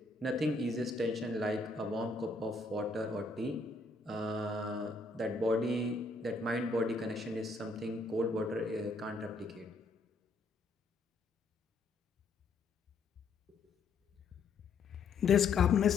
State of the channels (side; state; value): right; quieter; 3.6 dB